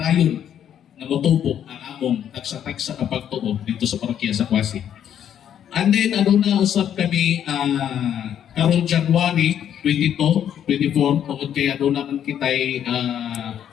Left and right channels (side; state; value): right; quieter; 9.7 dB